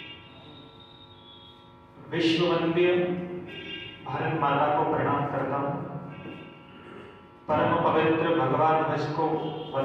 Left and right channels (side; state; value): both; identical; correlation 1.00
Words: विश्व वंद्य भारत माता को प्रणाम करता हूं। परम पवित्र भगवान ध्वज को